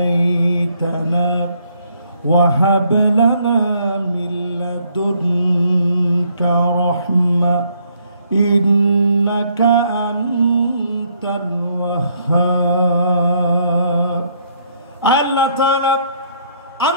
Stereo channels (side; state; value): both; inverted; correlation -0.68